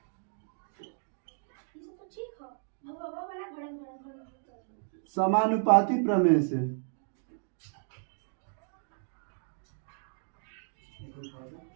समानुपाती प्रमेय से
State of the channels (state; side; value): silent; left; digital silence